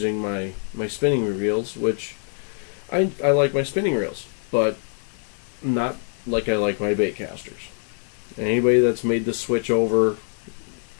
my spinning reels, which I like my spinning reels, but not like I like my bait casters. Anybody that's made the switch over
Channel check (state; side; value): silent; right; 62 dB below the other